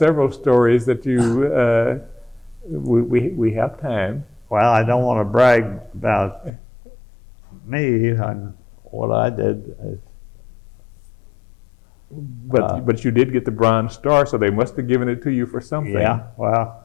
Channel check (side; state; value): right; drops out; at 6.5 s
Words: stories that you, we have time. Well, I don't want to brag about me and what I did. But you did get the Bronze Star, so they must have given it to you for something. Yeah,